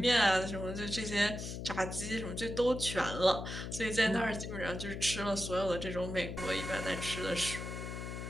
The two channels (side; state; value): left; noise; hum, 6 dB below the sound